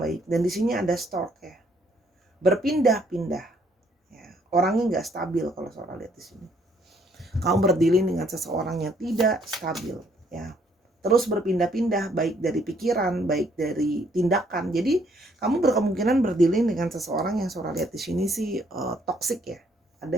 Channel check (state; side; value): normal; both; correlation 0.67